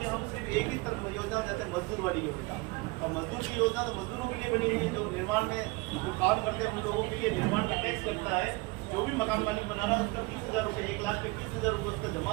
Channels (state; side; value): quieter; left; 24.8 dB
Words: हम सिर्फ एक ही तरफ योजना चाहते हैं, मजदूर वाली योजना। और मजदूर की योजना तो मजदूरों के लिए बनी है, जो निर्माण में जो काम करते हैं उन लोगों के लिए निर्माण में टैक्स लगता है। जो भी मकान मालिक बना रहा है उसका 30,000 रुपये, 1,20,000 रुपये उसका